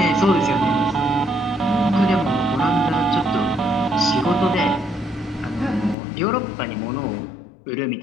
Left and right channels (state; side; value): drops out; right; at 6.0 s